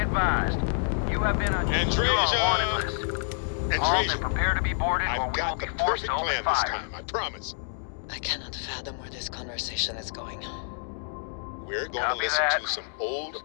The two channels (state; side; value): silent; right; digital silence